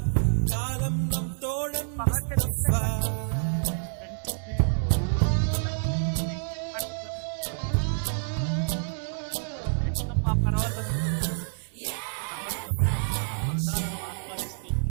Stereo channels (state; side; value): silent; left; digital silence